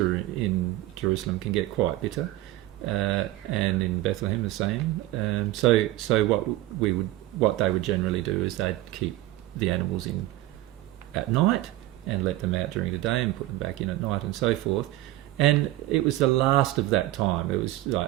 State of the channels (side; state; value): left; quieter; 16.2 dB